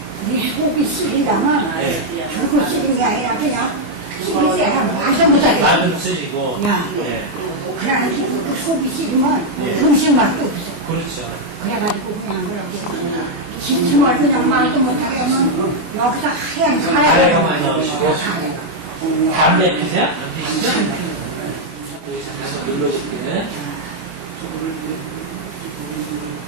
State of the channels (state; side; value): late; left; 24 ms